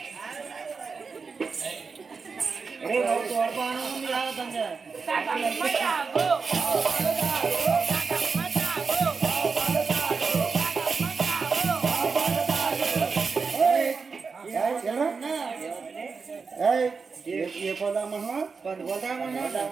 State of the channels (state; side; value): quieter; left; 5.0 dB